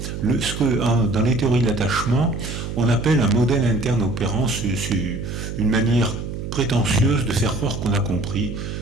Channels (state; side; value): noise; right; hum, 6 dB below the sound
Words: ce que dans les théories de l'attachement, on appelle un modèle interne opérant, c'est une manière prétentieuse de faire croire qu'on a compris